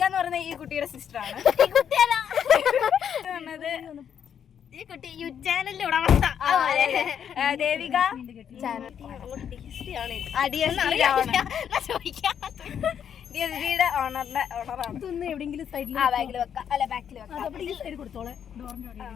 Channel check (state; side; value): quieter; right; 8.5 dB